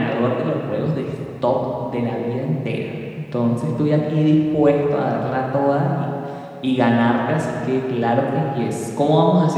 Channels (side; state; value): both; identical; correlation 1.00